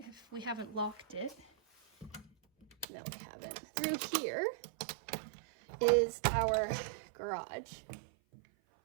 we haven't locked it, no, we haven't. Through here is our garage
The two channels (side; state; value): left; drops out; at 2.9 s